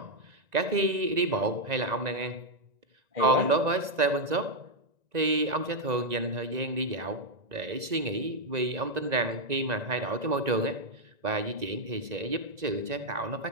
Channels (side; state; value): left; late; 1.9 ms